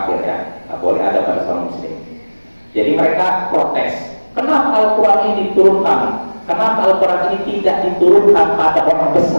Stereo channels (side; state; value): both; inverted; correlation -1.00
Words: ya, nggak boleh ada pada seorang muslim. Jadi mereka protes, kenapa Al-Quran ini diturunkan? Kenapa Al-Quran ini tidak diturunkan pada orang